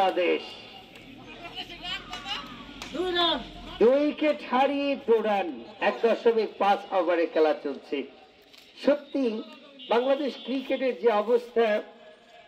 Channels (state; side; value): identical; both; correlation 1.00